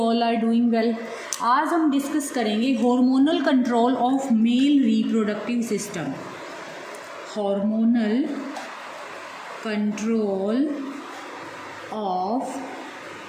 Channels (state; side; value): identical; both; correlation 1.00